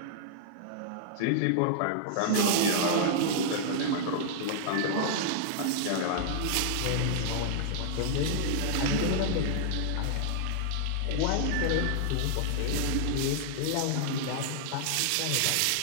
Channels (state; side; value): different; both; correlation -0.01